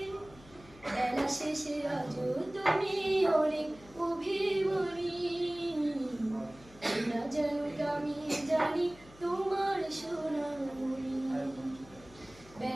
বেলা শেষে আজও তুমি অনেক অভিমানী, না জানুক আমি জানি তোমার সোনামণি।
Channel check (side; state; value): left; noise; hum, 22 dB below the sound